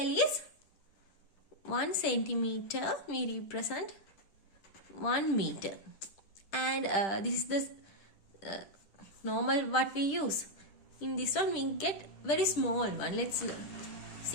is 1 centimeter. We represent 1 meter, and this is the normal what we use. In this one we get very small one. Let's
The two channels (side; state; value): right; late; 10 ms